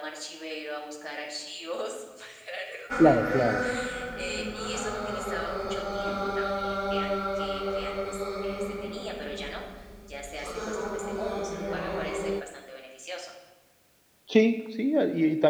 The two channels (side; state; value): both; identical; correlation 1.00